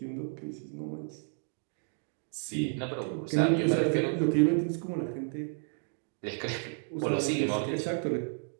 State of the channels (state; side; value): silent; left; 57 dB below the other